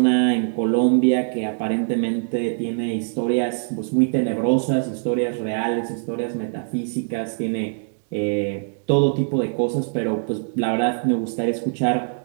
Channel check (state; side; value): silent; left; digital silence